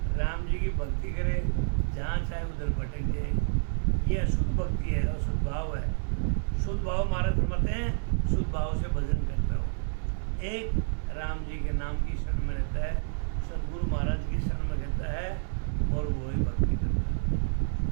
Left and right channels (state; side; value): silent; left; 58 dB below the other